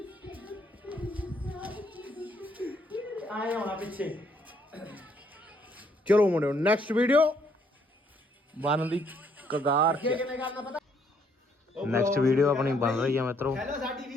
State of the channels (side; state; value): both; normal; correlation 0.68